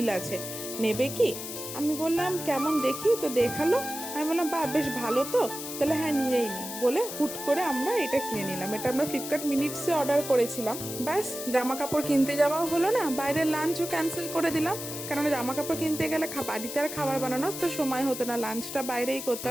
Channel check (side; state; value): left; noise; hiss, 8 dB below the sound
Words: আছে, নেবে কি? আমি বললাম কেমন দেখি, তো দেখালো। আমি বললাম বাহ, বেশ ভালো তো, তাহলে হ্যাঁ নিয়েই নি বলে হুট করে আমরা এটা কিনে নিলাম। এটা আমরা ফ্লিপকার্ট মিনিটসে অর্ডার করেছিলাম। ব্যাস, জামা কাপড় কিনতে যাওয়াও হলো না, বাইরের লাঞ্চও ক্যান্সেল করে দিলাম, কারণ জামা কাপড় কিনতে গেলে বাড়িতে আর খাবার বানানোর তো সময় হতো না, লাঞ্চটা বাইরেই